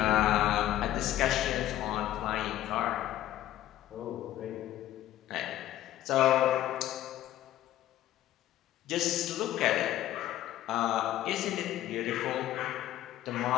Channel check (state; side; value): quieter; right; 13.4 dB